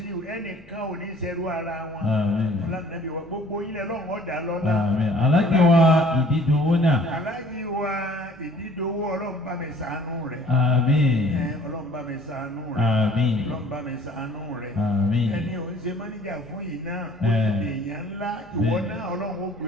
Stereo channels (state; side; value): normal; both; correlation 0.53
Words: ẹnìkan ò ní ṣerú ara wọn. Ọlá Nàbí wa gbogbo ilẹ̀ Ọlọ́run ọ̀dà lọ́lá. Aláàjì wa Ìdídòwó náà. Aláàjì wa Ìdídòwó, Ọlọ́run bá mi ṣàánú rẹ̀. Ọlọ́run bá mi ṣàánú rẹ̀. Ọlọ́run bá mi ṣàánú rẹ̀. Ẹni ò ń ṣe mọ́níjà fún yìí náà, ó ti dè èèyàn ńlá, ìwọ náà Ọlọ́run ó gbé